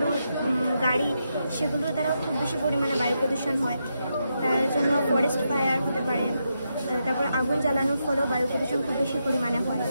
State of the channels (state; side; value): inverted; both; correlation -0.84